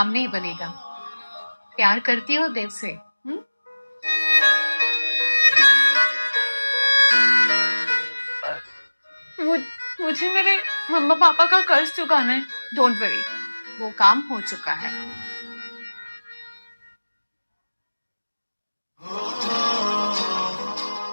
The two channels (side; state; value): both; inverted; correlation -1.00